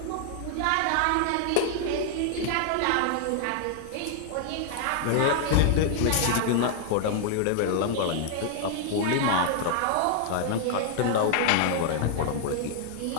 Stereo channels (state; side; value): different; both; correlation 0.00